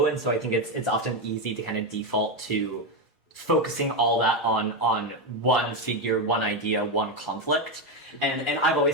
and so I think it's often easy to kind of default to focusing all that on one figure, one idea, one conflict. And I've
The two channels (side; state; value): both; normal; correlation 0.08